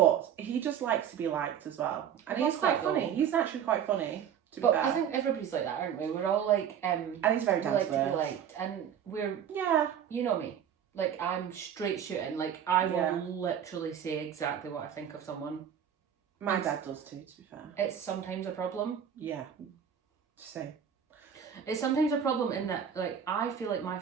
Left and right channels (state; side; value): quieter; left; 8.7 dB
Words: he just likes to be liked as well. And he's quite funny. He's actually quite funny, to be fair. I think everybody's like that, aren't we? We're all like... and he's very down to be liked. And we're... Yeah. You know me. Like, I'm straight shooting. Like, I will literally say exactly what I think of someone. My dad does too, to be fair. It's sometimes a problem. Yeah. Same. It's sometimes a problem in that, like, I feel like my